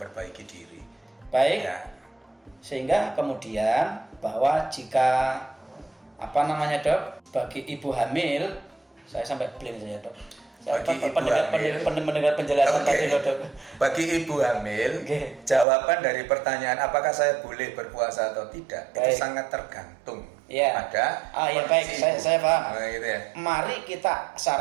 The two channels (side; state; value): left; drops out; at 15.7 s